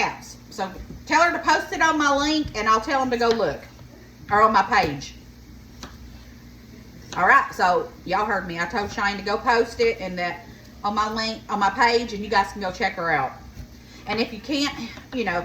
So, tell her to post it on my link, and I'll tell them to go look. Or on my page. All right, so y'all heard me. I told Cheyenne to go post it and that on my link, on my page, and you guys can go check her out. And if you can't, you know,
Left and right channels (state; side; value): identical; both; correlation 1.00